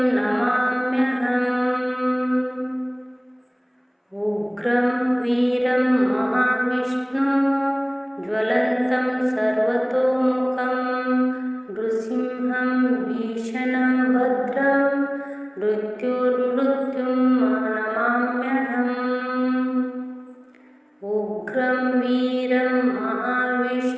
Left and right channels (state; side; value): identical; both; correlation 1.00